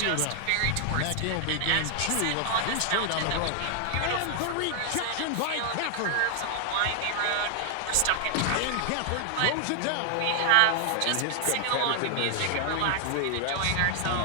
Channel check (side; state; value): both; different; correlation 0.00